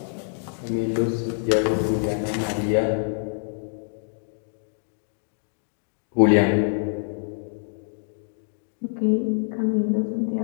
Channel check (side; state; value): right; silent; digital silence